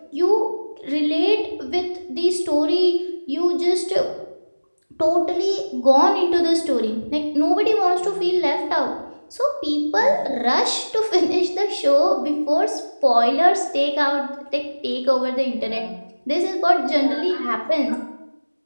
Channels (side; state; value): both; inverted; correlation -1.00